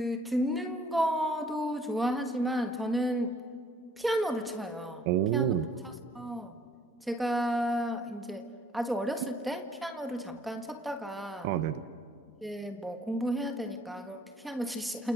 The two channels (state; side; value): normal; both; correlation 0.59